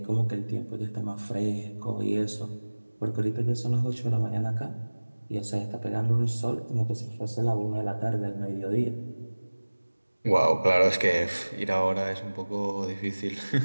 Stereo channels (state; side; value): inverted; both; correlation -1.00